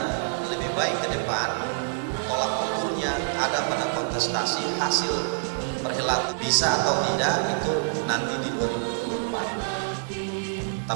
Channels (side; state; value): left; silent; 59 dB below the other